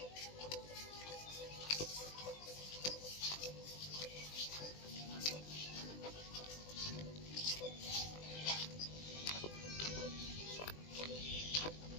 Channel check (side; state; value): right; late; 20 ms